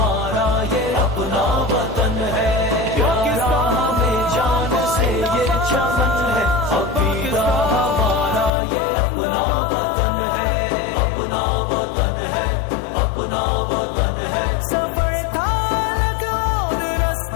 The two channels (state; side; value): drops out; right; at 8.5 s